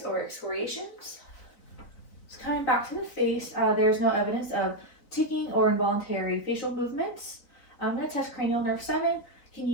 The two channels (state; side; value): late; right; 4.0 ms